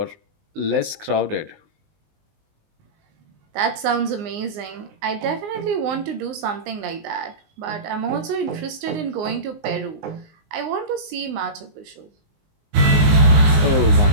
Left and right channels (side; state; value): left; late; 19 ms